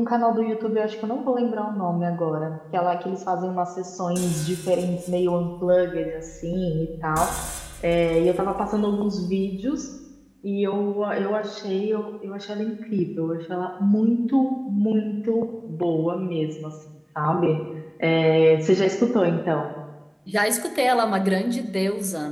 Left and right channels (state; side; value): identical; both; correlation 1.00